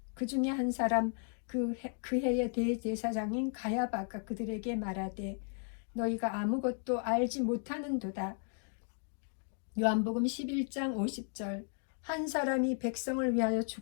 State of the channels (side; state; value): right; silent; 54 dB below the other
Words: 그 중에 한 사람 그 해의 대제사장인 가야바가 그들에게 말하되 너희가 아무것도 알지 못하는도다. 요한복음 11장 50절 한 사람이 백성을 위하여